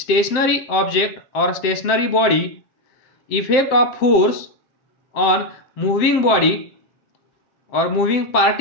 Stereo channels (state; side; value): late; right; 7.6 ms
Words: object or stationary body. Effect of force on moving body or moving